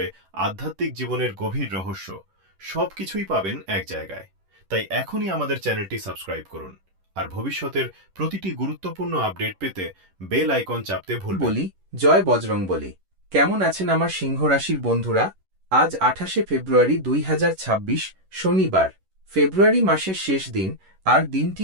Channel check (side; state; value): left; late; 11 ms